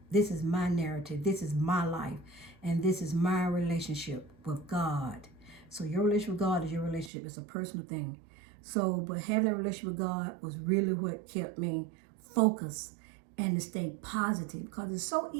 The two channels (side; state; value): left; drops out; at 7.1 s